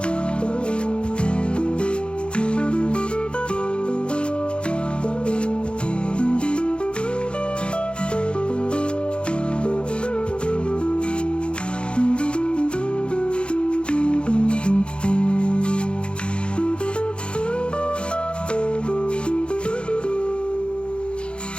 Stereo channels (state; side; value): late; right; 0.056 ms